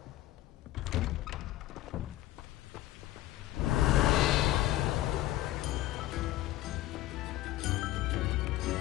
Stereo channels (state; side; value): quieter; right; 15.2 dB